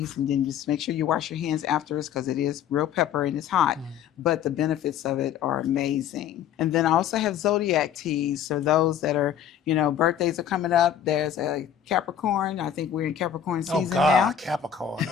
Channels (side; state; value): right; quieter; 9.1 dB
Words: and then just make sure you wash your hands afterwards because it is real pepper and it's hot. But the benefits of it are amazing. And then I also have zodiac teas. So those that are, birthdays are coming up. There's a Capricorn. I think we're in Capricorn season now. Capricorn.